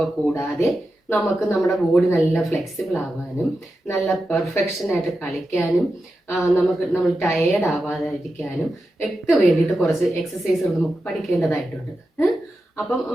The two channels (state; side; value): normal; both; correlation 0.90